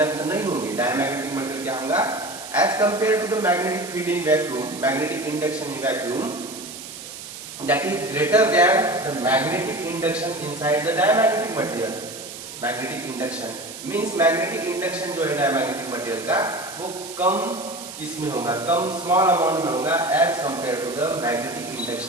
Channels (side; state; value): right; noise; hiss, 12 dB below the sound